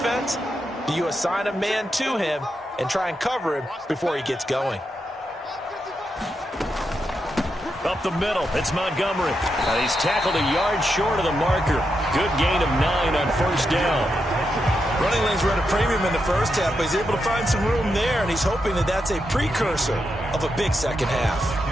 do you assign a man to him and try and cover him before he gets going? Up the middle, it's Montgomery. He's tackled a yard short of the marker. Good gain of 9 on first down. Running lanes were at a premium in the first half, but he's able to find some room there, and he's hoping that that's a precursor of a big second half.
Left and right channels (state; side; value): normal; both; correlation 0.85